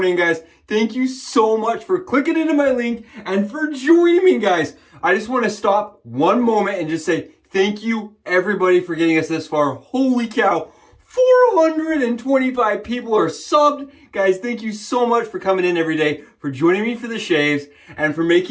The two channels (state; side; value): identical; both; correlation 1.00